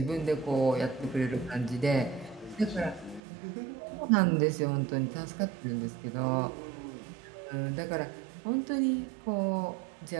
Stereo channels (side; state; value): left; drops out; at 3.2 s